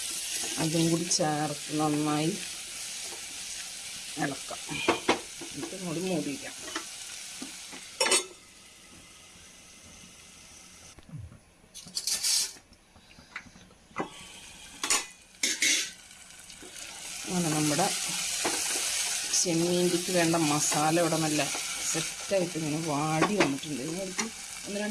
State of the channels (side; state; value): both; identical; correlation 1.00